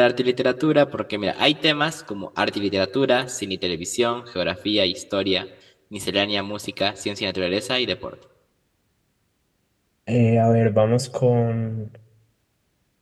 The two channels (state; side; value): identical; both; correlation 1.00